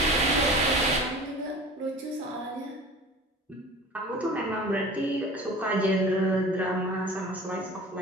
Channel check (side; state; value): both; normal; correlation 0.40